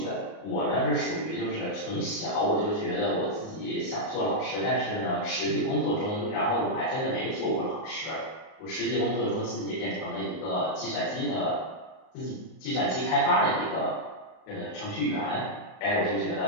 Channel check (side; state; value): right; late; 38 ms